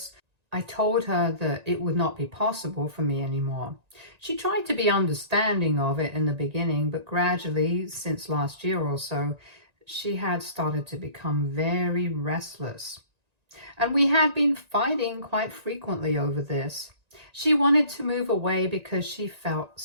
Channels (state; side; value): late; left; 1.9 ms